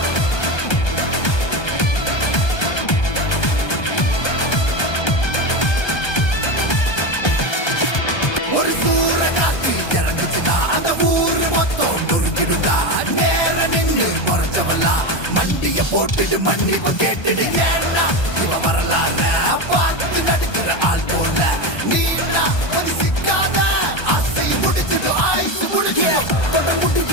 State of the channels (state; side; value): late; right; 1.2 ms